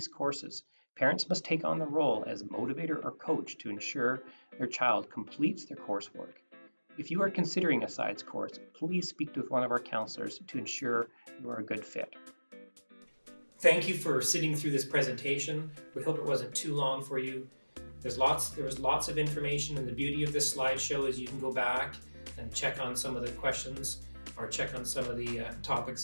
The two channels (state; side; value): inverted; both; correlation -1.00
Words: courses, parents must take on the role as motivator or coach to ensure their child completes their coursework. If you are considering a SIDES course, please speak with one of our counselors to ensure you are a good fit. Thank you for sitting through this presentation. We hope it wasn't too long for you. There was lots of information, and the beauty of this slideshow is you can go back and check on some of the questions or check on some of the